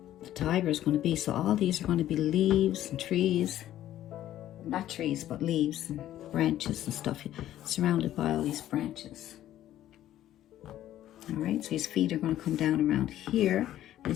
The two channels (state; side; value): quieter; right; 12.8 dB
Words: the tiger is going to be. So all these are going to be leaves and trees. Not trees, but leaves and branches and stuff. Surrounded by all these branches. All right, so his feet are going to come down around here.